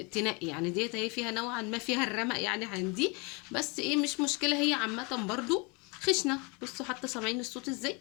تنقي. يعني ديت هي فيها نوعا ما فيها الرمق يعني عندي، بس ايه مش مشكلة. هي عامة برضو خشنة. بصوا حتى سامعين الصوت ازاي،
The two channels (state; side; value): quieter; right; 29.7 dB